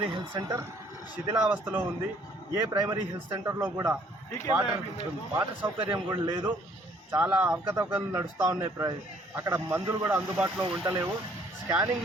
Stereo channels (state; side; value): normal; both; correlation 0.61